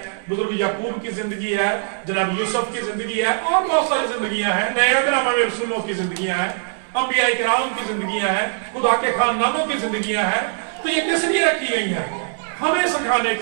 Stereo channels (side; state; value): left; silent; 64 dB below the other